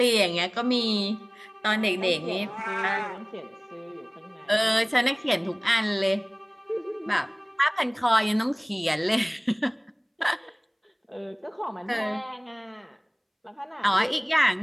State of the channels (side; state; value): both; identical; correlation 1.00